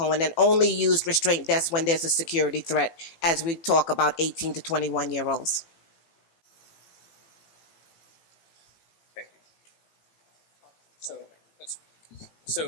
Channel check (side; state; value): right; late; 18 ms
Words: and only use restraint desks when there's a security threat, as we talk about 18 to 21-year-olds. Thank you.